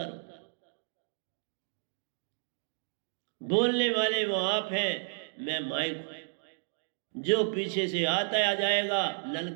रहूं। बोलने वाले वो आप हैं, मैं माइक हूं। जो पीछे से आता आ जाएगा,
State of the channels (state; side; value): silent; left; digital silence